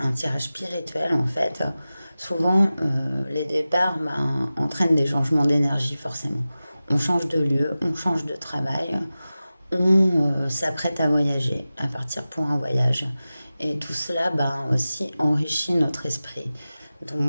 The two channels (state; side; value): inverted; both; correlation -0.96